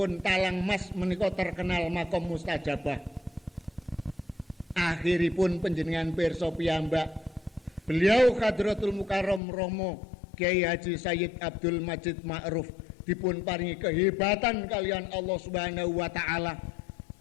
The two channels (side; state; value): right; drops out; at 9.4 s